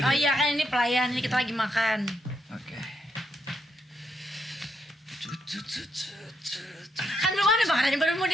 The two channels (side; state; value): both; normal; correlation 0.79